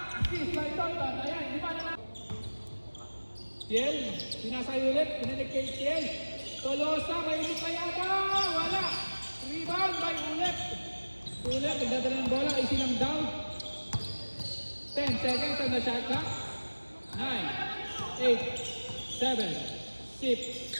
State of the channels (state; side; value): inverted; both; correlation -1.00